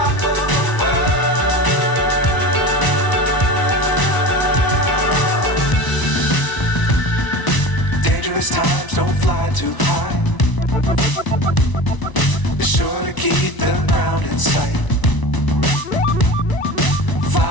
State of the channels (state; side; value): late; right; 1.0 ms